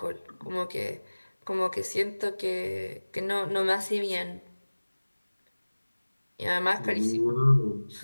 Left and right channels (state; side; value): inverted; both; correlation -1.00